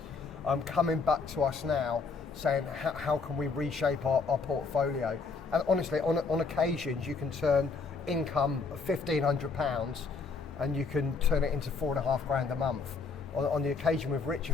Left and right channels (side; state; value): right; quieter; 4.7 dB